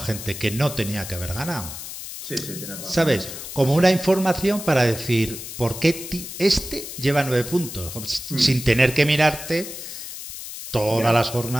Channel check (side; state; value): left; noise; hiss, 10 dB below the sound